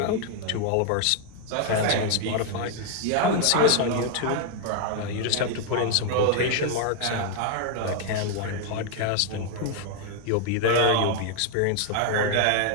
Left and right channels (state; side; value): different; both; correlation 0.00